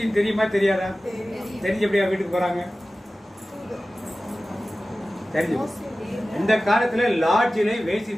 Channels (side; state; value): both; normal; correlation 0.96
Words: தெரியுமா தெரியாதா? தெரிஞ்ச எப்படியா வீட்டுக்கு போறாங்க? தெரிஞ்சு. இந்த காலத்துல லாட்ஜிலே